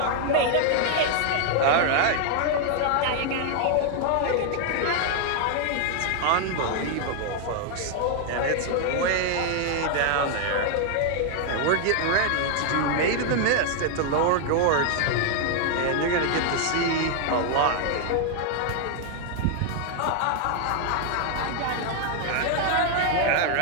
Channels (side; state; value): both; different; correlation 0.00